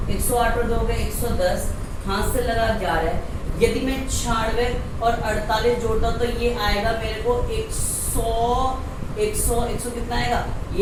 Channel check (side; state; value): both; identical; correlation 1.00